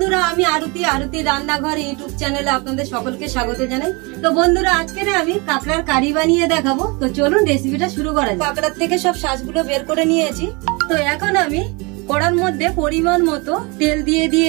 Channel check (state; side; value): quieter; left; 28.4 dB